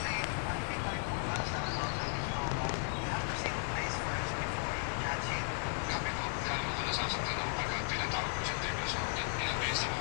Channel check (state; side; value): silent; right; 54 dB below the other